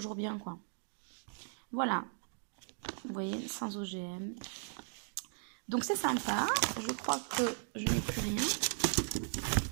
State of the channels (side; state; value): left; silent; digital silence